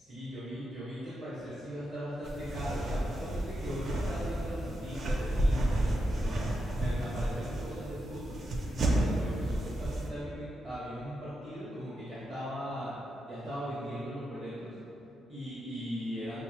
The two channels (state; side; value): normal; both; correlation 0.86